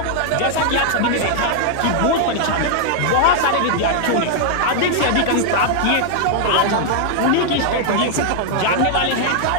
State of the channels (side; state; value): both; different; correlation 0.00